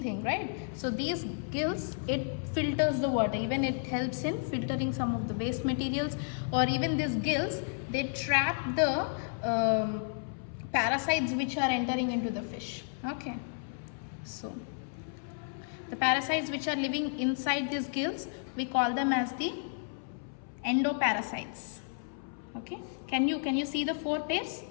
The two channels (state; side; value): silent; right; 56 dB below the other